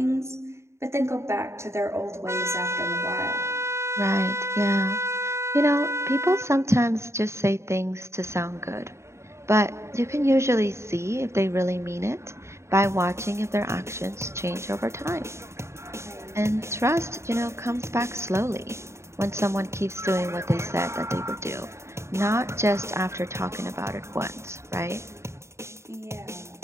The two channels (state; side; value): late; left; 0.13 ms